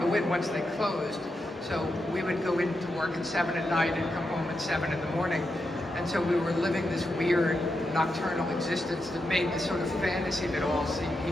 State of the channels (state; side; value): normal; both; correlation 0.86